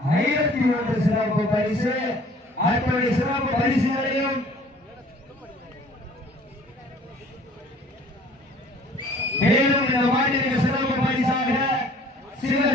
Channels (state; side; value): normal; both; correlation 0.53